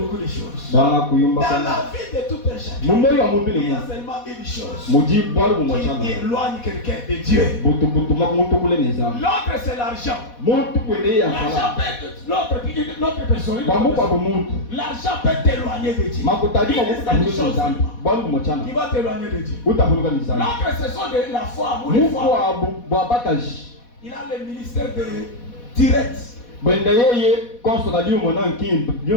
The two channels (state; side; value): late; right; 4.1 ms